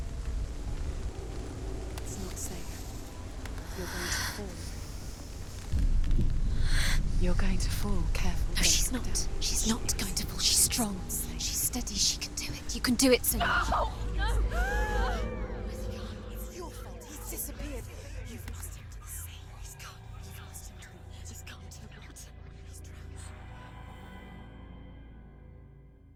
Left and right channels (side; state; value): both; identical; correlation 1.00